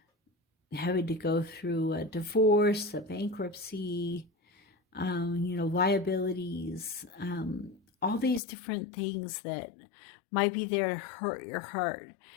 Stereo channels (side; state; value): right; drops out; at 8.4 s